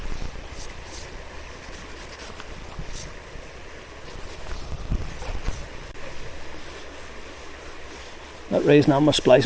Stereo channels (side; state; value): both; identical; correlation 1.00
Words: That raising on my